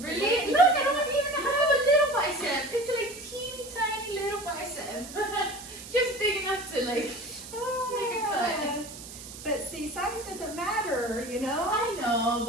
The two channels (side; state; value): right; noise; hiss, 14 dB below the sound